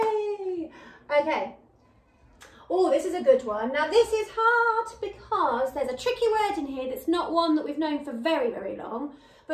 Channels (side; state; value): both; identical; correlation 1.00